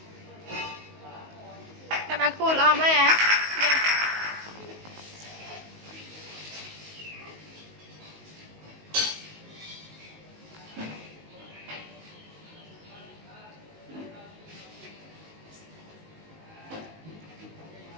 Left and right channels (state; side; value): late; left; 19 ms